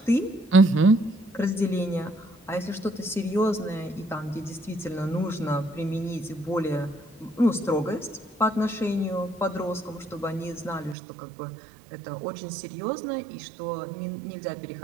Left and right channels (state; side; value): drops out; left; at 11.0 s